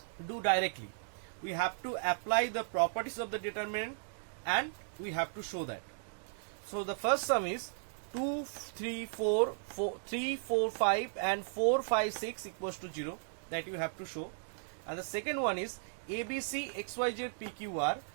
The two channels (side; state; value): left; silent; digital silence